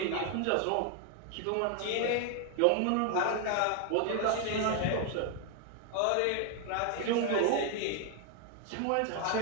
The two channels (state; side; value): different; both; correlation 0.00